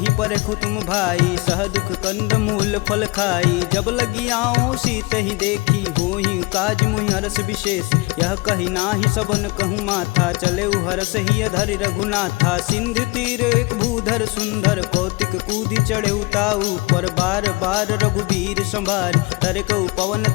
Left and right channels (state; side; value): quieter; right; 24.7 dB